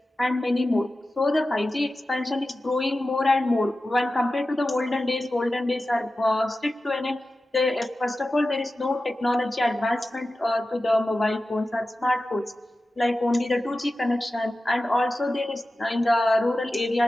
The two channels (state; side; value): normal; both; correlation 0.94